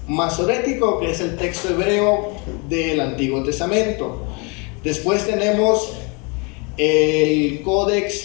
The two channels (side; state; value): right; quieter; 31.7 dB